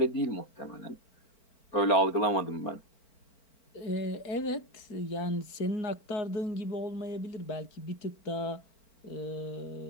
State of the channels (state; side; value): late; right; 4.4 ms